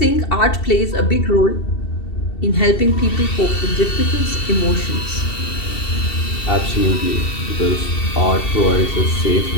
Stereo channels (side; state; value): right; late; 2.7 ms